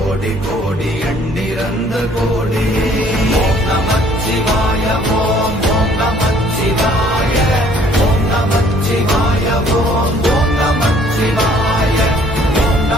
கோடி எண்ணிறந்த கோடி. ஓம் நமச்சிவாய ஓம் ஓம் நமச்சிவாய ஓம் நமச்சிவாய ஓம் ஓம் நமச்சிவாய ஓம்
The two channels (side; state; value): both; normal; correlation 0.59